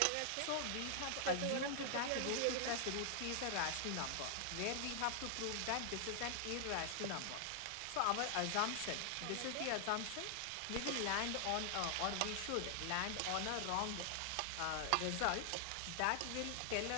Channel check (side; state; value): both; different; correlation 0.00